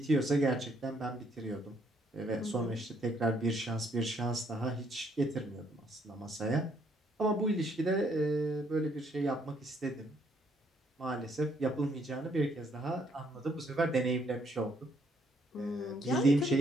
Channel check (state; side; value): normal; both; correlation 0.69